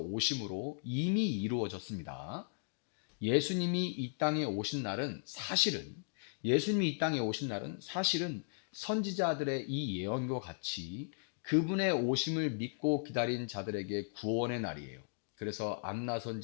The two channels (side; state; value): right; silent; digital silence